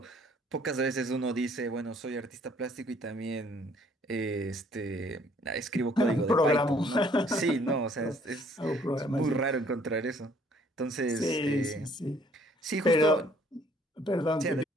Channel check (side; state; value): both; normal; correlation 0.61